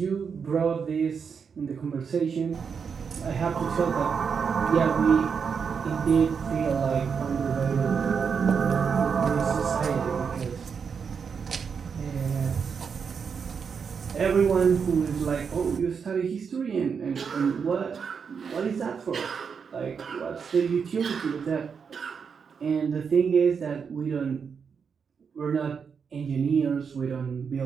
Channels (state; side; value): quieter; left; 6.3 dB